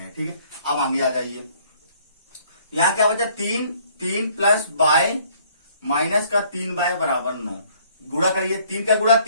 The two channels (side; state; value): both; inverted; correlation -0.61